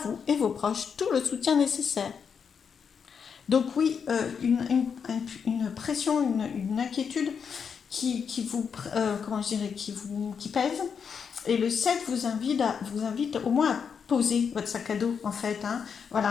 et vos proches tout le soutien nécessaire. Donc oui, une pression, une inquiétude qui vous, comment je dirais, qui pèse. Et le 7 vous invite au moins à poser votre sac à dos, en fait.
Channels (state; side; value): quieter; right; 6.6 dB